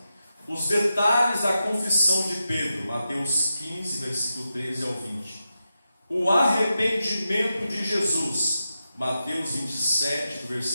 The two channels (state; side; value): inverted; both; correlation -0.89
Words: Os detalhes da confissão de Pedro, Mateus 15, versículo 13 ao 20. O arrependimento de Jesus, Mateus 27, do